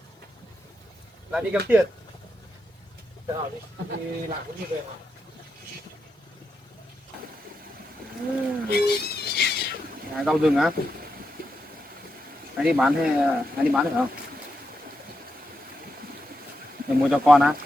Lại đi kiếm tiền. Thế nào đi? Đi làm cũng như về mà. Rau rừng á? Anh đi bán hay anh đi bán được không? Để mua cho con á?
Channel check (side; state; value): both; normal; correlation 0.85